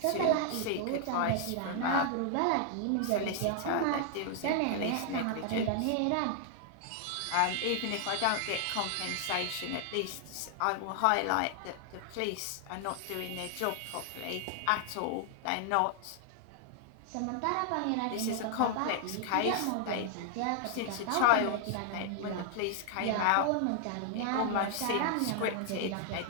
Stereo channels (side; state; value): both; different; correlation 0.00